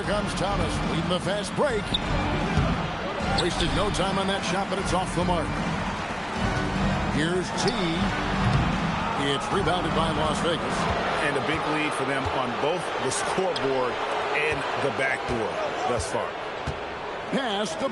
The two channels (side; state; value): both; identical; correlation 1.00